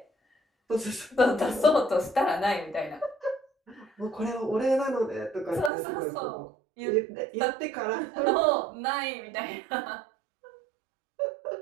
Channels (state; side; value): drops out; left; at 5.7 s